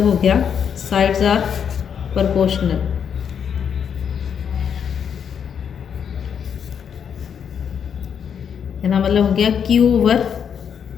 हो गया साइड्स आर प्रोपोर्शनल। इसका मतलब हो गया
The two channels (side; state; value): right; quieter; 7.7 dB